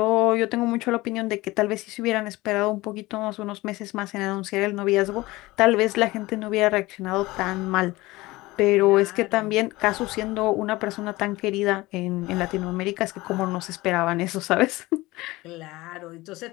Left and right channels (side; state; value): right; quieter; 20.0 dB